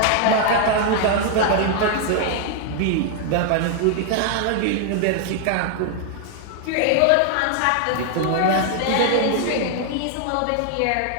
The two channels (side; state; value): both; different; correlation 0.00